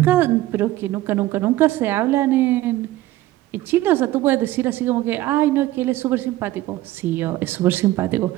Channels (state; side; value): quieter; left; 16.1 dB